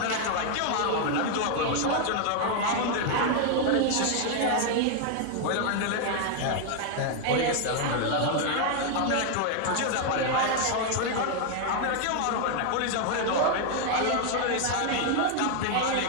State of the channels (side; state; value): both; different; correlation 0.00